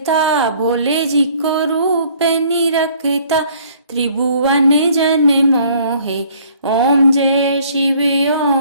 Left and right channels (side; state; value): both; inverted; correlation -0.58